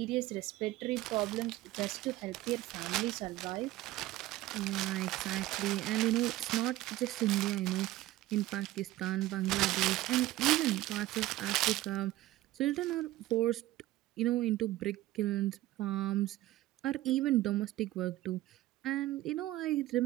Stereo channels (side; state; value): left; quieter; 16.4 dB